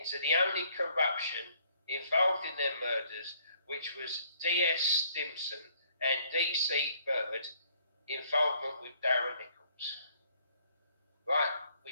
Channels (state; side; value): inverted; both; correlation -0.64